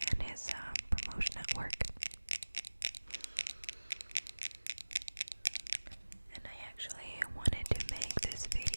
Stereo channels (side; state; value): both; inverted; correlation -1.00